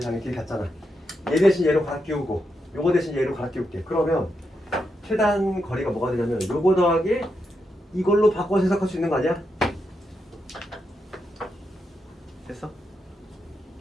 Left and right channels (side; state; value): both; normal; correlation 0.84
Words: 장의 길이 같잖아. 얘 대신 얘로 갈아 끼우고 요거 대신 얘로 갈아 끼울게. 그러면 최단 거리가 뭐가 되냐면 요거 더하기 이걸로 바꿔서 해석할 수 있는 거 아니야? 됐어?